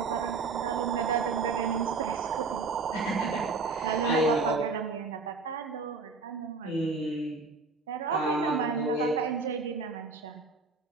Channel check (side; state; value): left; quieter; 4.1 dB